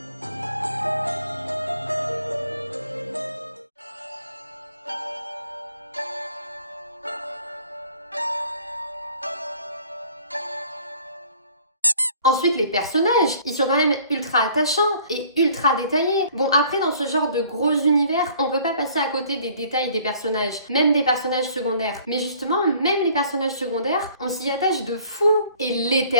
Ensuite, les personnages, ils sont quand même ultra attachants et ultra détaillés. Bon, après, dans ce genre de gros univers, on peut pas passer à côté des détails des personnages, même des personnages secondaires. Mais justement, même les personnages secondaires, on s'y attache de fou. Et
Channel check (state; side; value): inverted; both; correlation -0.55